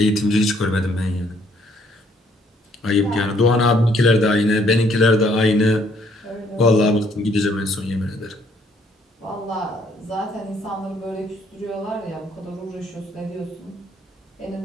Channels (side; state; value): both; normal; correlation 0.66